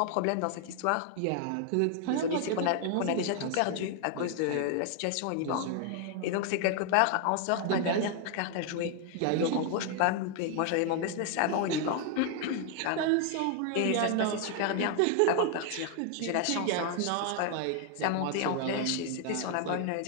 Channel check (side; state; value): both; different; correlation 0.00